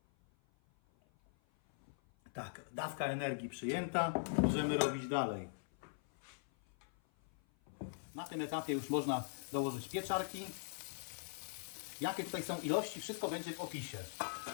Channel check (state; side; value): silent; right; 50 dB below the other